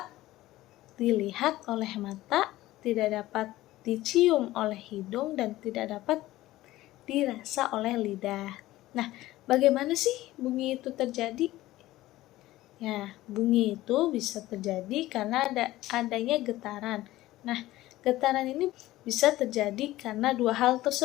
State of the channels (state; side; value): quieter; right; 16.4 dB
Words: dilihat oleh mata, tidak dapat dicium oleh hidung, dan tidak dapat dirasa oleh lidah. Nah, bagaimana sih bunyi itu terjadi? Ya, bunyi itu bisa terjadi karena adanya getaran. Nah, getaran ini bisa terjadi karena dua hal